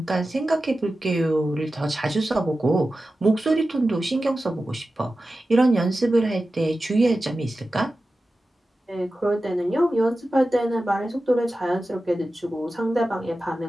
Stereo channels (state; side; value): normal; both; correlation 0.94